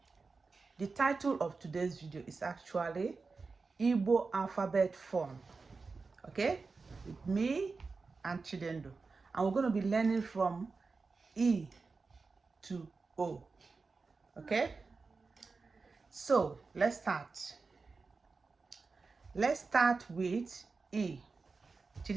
the title of today's video is actually Igbo alphabet form, okay, with me and Chidendo, and we're going to be learning from E to O. Okay, so let's start. Let's start with E.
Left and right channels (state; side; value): quieter; left; 4.3 dB